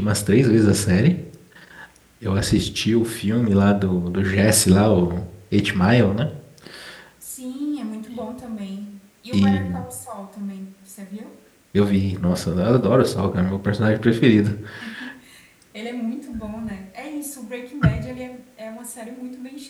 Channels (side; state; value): both; identical; correlation 1.00